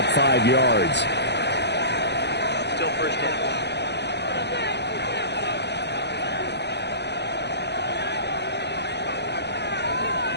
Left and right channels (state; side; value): late; right; 0.50 ms